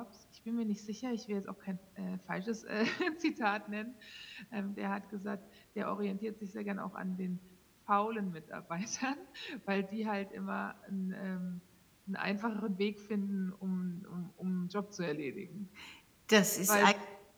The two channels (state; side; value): identical; both; correlation 1.00